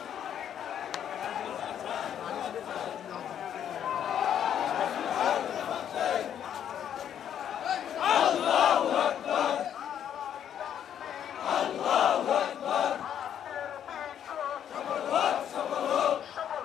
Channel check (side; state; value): right; quieter; 9.5 dB